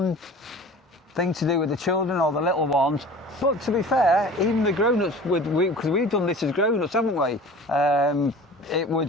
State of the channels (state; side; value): normal; both; correlation 0.41